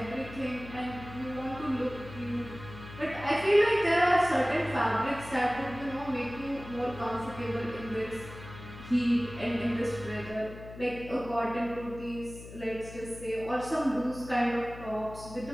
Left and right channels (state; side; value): noise; left; hum, 14 dB below the sound